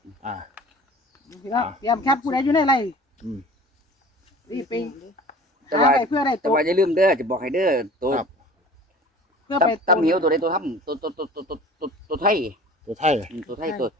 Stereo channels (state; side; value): normal; both; correlation 0.44